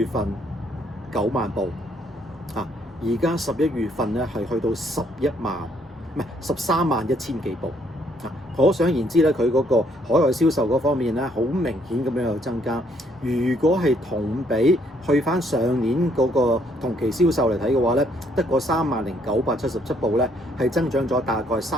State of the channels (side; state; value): both; normal; correlation 0.68